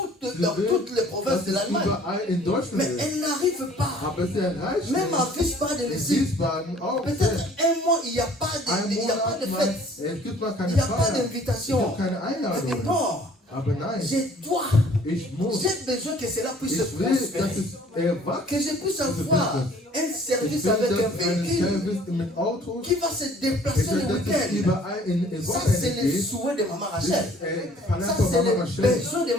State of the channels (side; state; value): both; normal; correlation 0.54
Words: les provinces das de ist l'Allemagne. überall in Deutschland Mais ist. elle n'arrive pas. Aber sie erreicht Même à nicht. Wiesbaden, In ici, Wiesbaden auch peut-être nicht. un mois, il n'y a pas Ein de, il y a pas de Monat mal, fête. es gibt mal Il keine n'y a pas Feier. Es d'invitation. gibt keine Elle dit Einladung. non, Aber nein, je dois, ich muss. j'ai besoin que cela puisse Ich will, dass prospérer. es erwachsen. Que je puisse avoir un Ich service will, avec un dass ein véhicule Service mit Autos, qui va se ich déplacer will, le dass es week-end. überall in Ça, Wochenende c'est le geht. souhait de Maman Das Rachel. ist Verlangen Ça, von c'est Mama le Rachel. besoin de